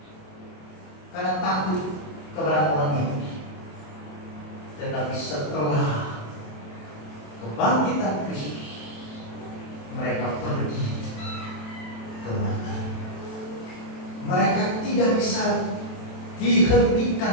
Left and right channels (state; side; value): late; right; 27 ms